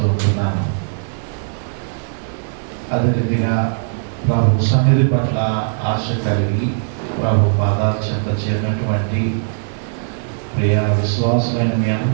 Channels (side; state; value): left; silent; digital silence